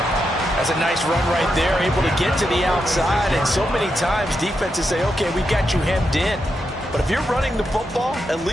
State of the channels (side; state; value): both; normal; correlation 0.85